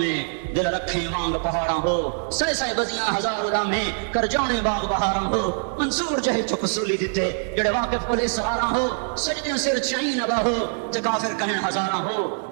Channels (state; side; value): silent; left; digital silence